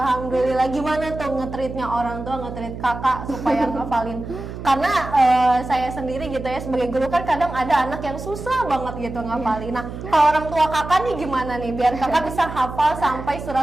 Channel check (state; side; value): noise; right; hum, 10 dB below the sound